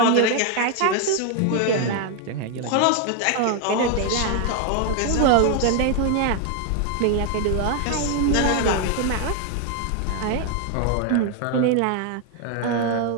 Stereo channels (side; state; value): both; different; correlation 0.01